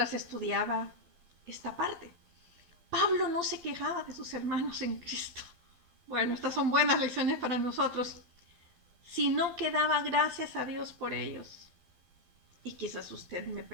estudiaba esta parte. Pablo no se quejaba de sus hermanos en Cristo. Bueno, estas son buenas lecciones para nosotros. Sino que daba gracias a Dios por ellos. Y quizás usted me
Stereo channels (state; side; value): late; left; 12 ms